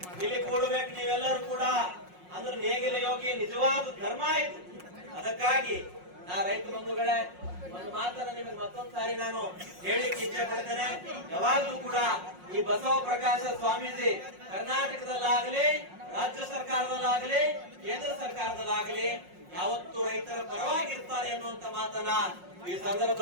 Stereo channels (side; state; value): left; late; 5.5 ms